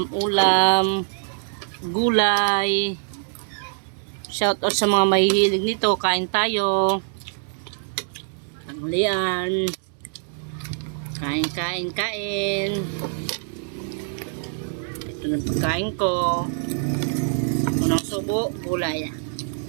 gulay. Shout out sa mga mahihilig nito. Kain tayo. Tanghalian. Kain. Ito na pagkain ko. Unang subo, gulay.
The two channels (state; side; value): silent; left; 62 dB below the other